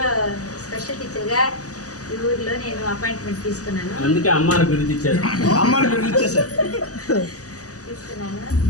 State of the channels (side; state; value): right; late; 0.67 ms